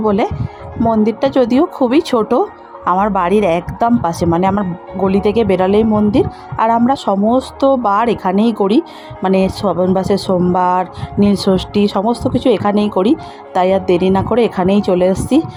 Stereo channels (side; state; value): both; identical; correlation 1.00